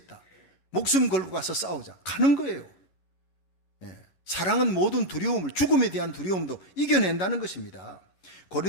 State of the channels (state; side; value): late; right; 11 ms